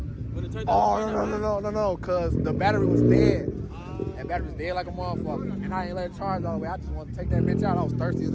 When it turned Oh, off. no, cause the battery was dead. That battery was dead like a motherfucker. And I ain't let it charge all the way. I just wanted to take that bitch out. I was thirsty as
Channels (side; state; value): both; identical; correlation 1.00